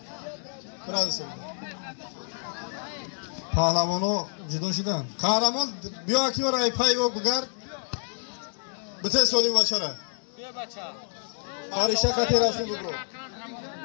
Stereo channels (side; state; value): right; silent; digital silence